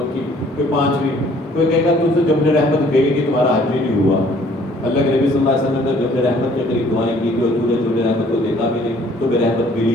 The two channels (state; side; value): normal; both; correlation 0.58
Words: کوئی 5ویں، کوئی کہے گا تم سے جبل رحمت گئی کہ تمہارا حج بھی نہیں ہوا۔ اللہ کے نبی صلی اللہ علیہ وسلم نے جبل رحمت کے قریب دعائیں کی تھی اور تو نے جبل رحمت کو دیکھا بھی نہیں، تمہیں رحمت